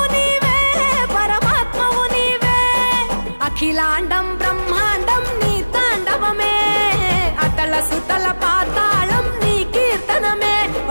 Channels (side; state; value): both; inverted; correlation -1.00